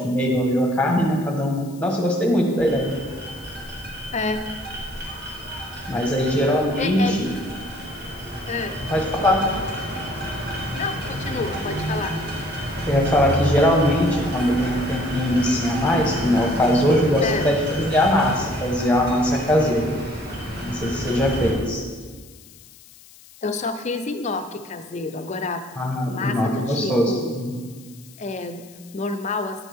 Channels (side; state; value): left; noise; hiss, 23 dB below the sound